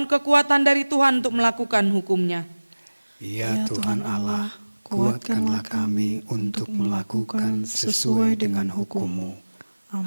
kekuatan dari Tuhan untuk melakukan hukumnya. Ya Tuhan Allah, kuatkanlah kami untuk melakukan sesuai dengan hukum-Mu.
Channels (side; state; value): both; inverted; correlation -1.00